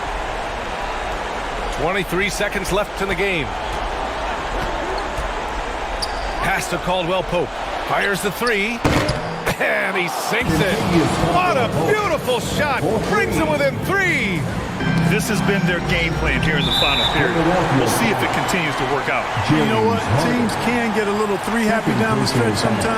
23 seconds left in the game. Pass to Caldwell Pope. Fires the 3. And he sinks it. What a beautiful shot. Brings him within 3. This has been their game plan here in the final period. We'll see if it continues to work out. You know what? Teams can get a little three happy down the stretch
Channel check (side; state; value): both; identical; correlation 1.00